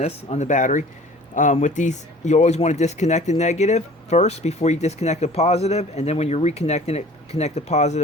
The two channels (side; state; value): both; normal; correlation 0.47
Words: battery. With these, you always want to disconnect the negative first before you disconnect the positive, and then when you're reconnecting it, connect the